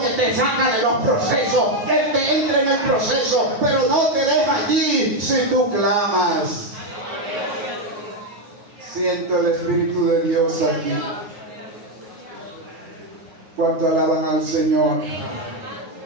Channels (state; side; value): late; left; 9.5 ms